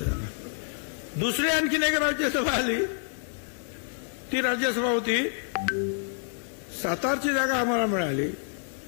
दुसरी आणखीन एक राज्यसभा आली. ती राज्यसभा होती सातारची जागा आम्हाला मिळाली,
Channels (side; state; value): right; silent; digital silence